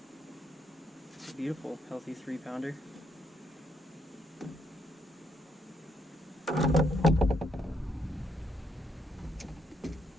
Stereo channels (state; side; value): normal; both; correlation 0.74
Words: It's a beautiful, healthy 3-pounder.